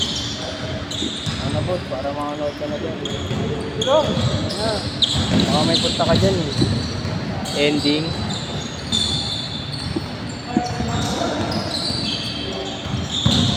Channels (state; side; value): identical; both; correlation 1.00